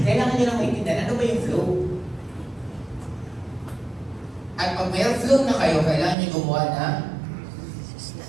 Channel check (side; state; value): left; drops out; at 6.2 s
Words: nyo lang maintindihan, ano ba yung flow? At pag may flow na kayo, kailangan nyo gumawa ng